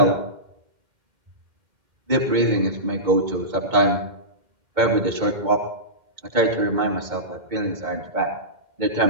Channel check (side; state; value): left; late; 2.1 ms